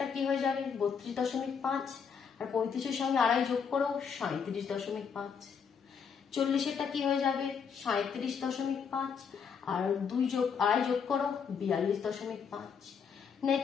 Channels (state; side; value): quieter; right; 6.5 dB